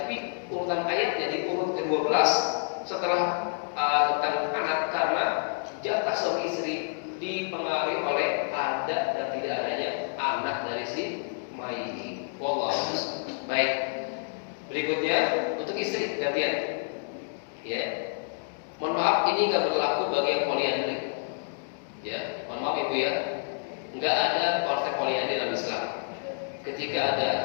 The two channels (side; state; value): right; silent; digital silence